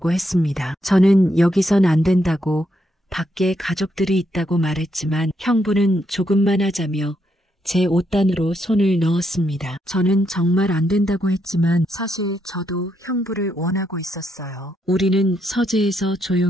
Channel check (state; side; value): normal; both; correlation 0.78